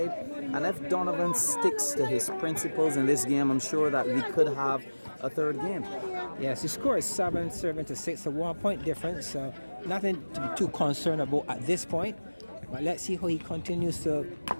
And if Donavan sticks to his principles in this game, I'm sure that we could have a third game. Yes, the score is 7-6, a 1 point difference, so nothing to be too concerned about at this point. But let's see how he continues to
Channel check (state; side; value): inverted; both; correlation -1.00